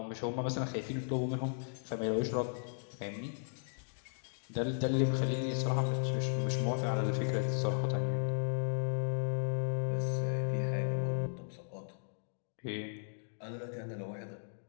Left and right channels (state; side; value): silent; right; digital silence